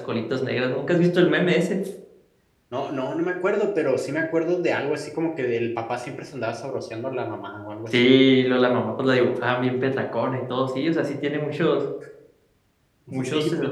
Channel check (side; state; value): both; identical; correlation 1.00